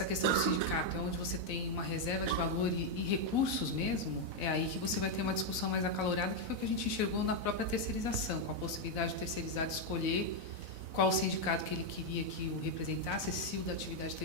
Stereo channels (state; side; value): late; left; 4.0 ms